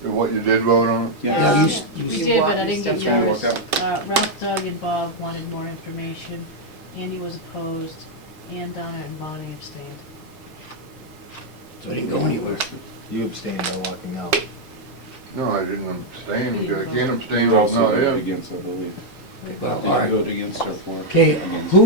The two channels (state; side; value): normal; both; correlation -0.01